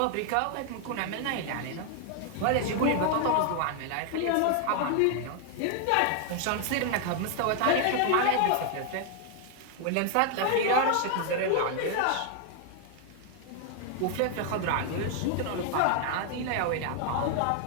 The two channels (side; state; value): both; different; correlation 0.00